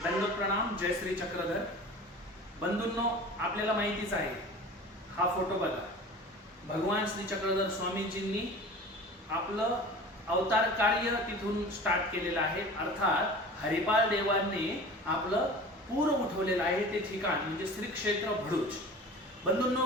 दंड प्रणाम. जय श्री चक्रधर. बंधूंनो, आपल्याला माहितीच आहे, हा फोटो बघा. भगवान श्री चक्रधर स्वामीजींनी आपलं अवतार कार्य तिथून स्टार्ट केलेलं आहे. अर्थात हरिपाल देवांनी आपलं पूर उठवलेलं आहे ते ठिकाण म्हणजे श्री क्षेत्र भरूच.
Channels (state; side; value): normal; both; correlation 0.39